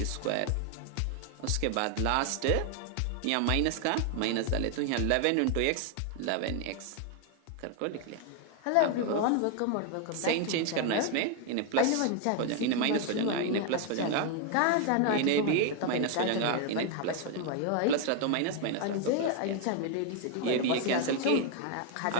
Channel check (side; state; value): both; different; correlation 0.01